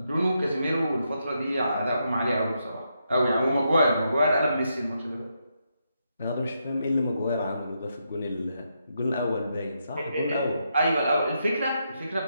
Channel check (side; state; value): both; inverted; correlation -0.81